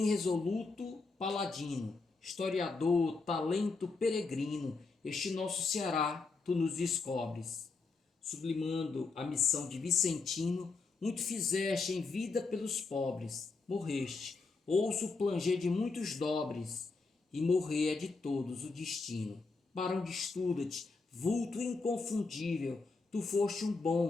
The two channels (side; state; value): right; quieter; 4.1 dB